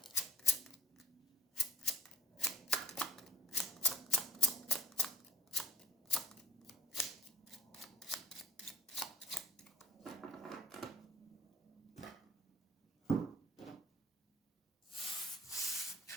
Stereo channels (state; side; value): normal; both; correlation 0.53